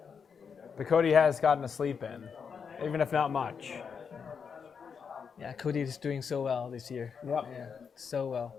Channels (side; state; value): right; quieter; 6.3 dB